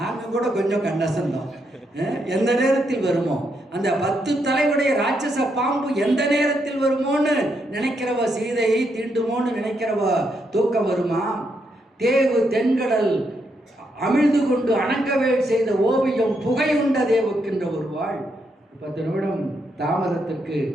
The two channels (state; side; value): normal; both; correlation 0.79